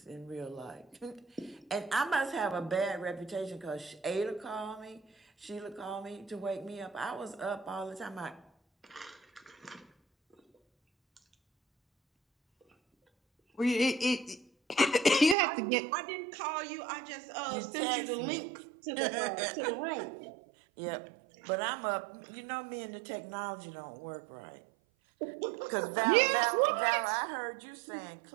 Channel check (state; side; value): drops out; left; at 15.4 s